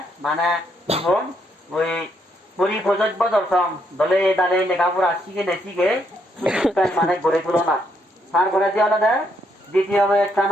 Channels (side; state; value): both; normal; correlation 0.75